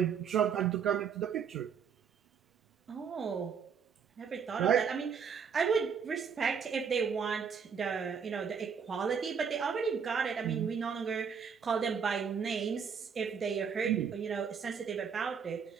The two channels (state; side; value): quieter; left; 6.7 dB